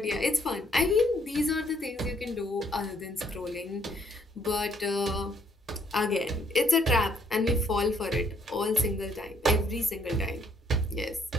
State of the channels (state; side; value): normal; both; correlation 0.67